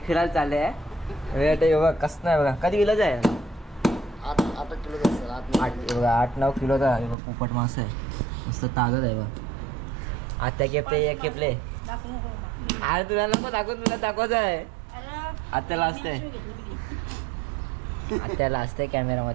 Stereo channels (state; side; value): drops out; left; at 7.2 s